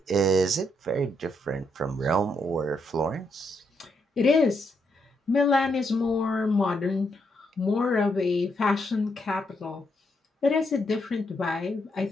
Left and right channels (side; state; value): both; normal; correlation 0.78